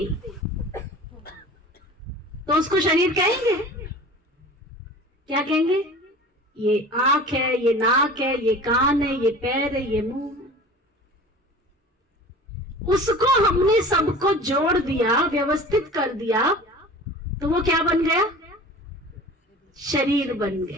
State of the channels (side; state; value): both; normal; correlation 0.40